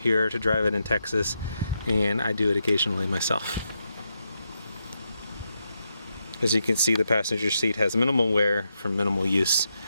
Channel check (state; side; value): inverted; both; correlation -0.83